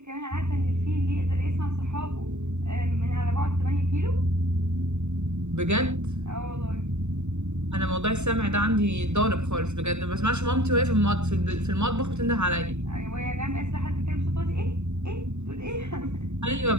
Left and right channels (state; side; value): late; left; 0.82 ms